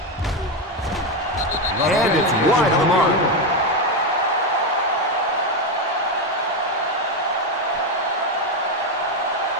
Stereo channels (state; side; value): normal; both; correlation 0.09